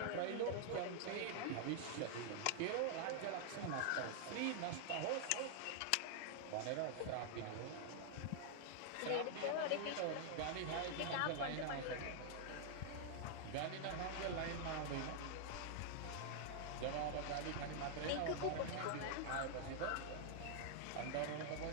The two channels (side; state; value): both; different; correlation -0.01